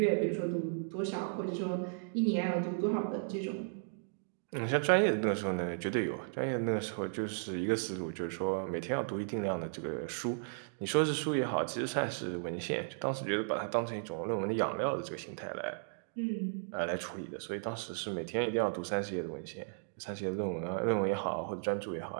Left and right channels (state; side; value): silent; left; digital silence